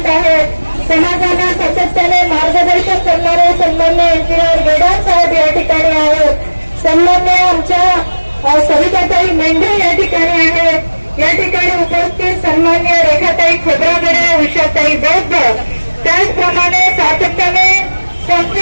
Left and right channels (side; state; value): both; inverted; correlation -1.00